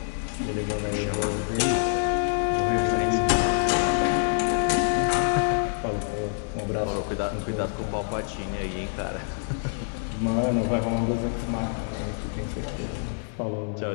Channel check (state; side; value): silent; right; 60 dB below the other